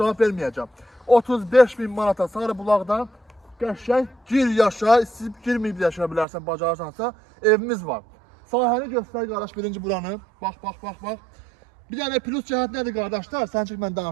verməyəcəm. 35 bin manata Sarıbulaqda qəşəng gir yaşa, istəyib girməyib yaşaya bilərsən, bacarırsansa evimiz var. Sahəni göstər qardaş birinci buranı. Bax. Bir dənə plus cəhət nədir qardaşlar? Sən çıx mən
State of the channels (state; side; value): drops out; left; at 6.2 s